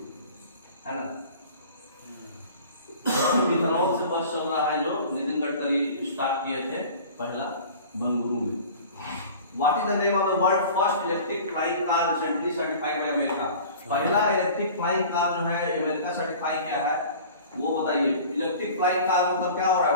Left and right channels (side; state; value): both; inverted; correlation -0.42